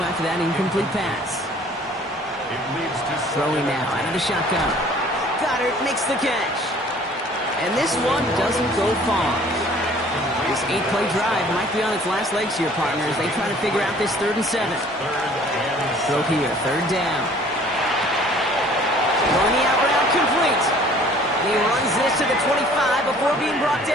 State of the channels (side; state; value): both; normal; correlation 0.53